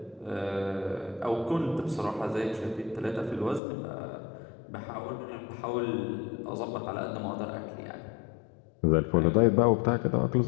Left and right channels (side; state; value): right; drops out; at 3.6 s